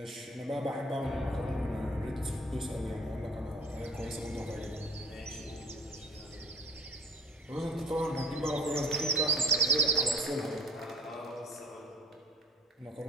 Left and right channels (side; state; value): both; normal; correlation 0.45